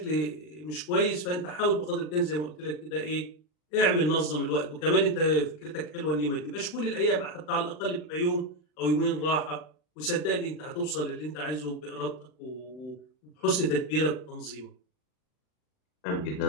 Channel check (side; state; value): right; late; 39 ms